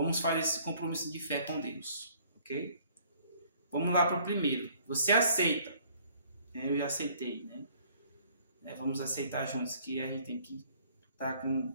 fazer esse compromisso de fé com Deus. Ok? Vamos lá para o primeiro. Você aceita? Eu já aceitei, né? Vamos aceitar juntos que a gente tem que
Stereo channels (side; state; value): both; inverted; correlation -0.58